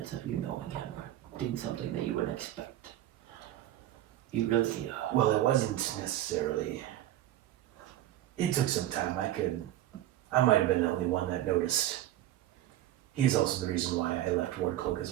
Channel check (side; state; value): left; quieter; 13.4 dB